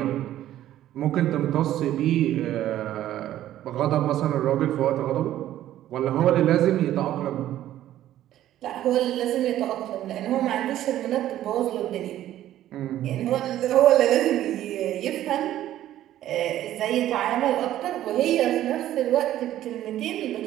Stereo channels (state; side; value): quieter; left; 12.9 dB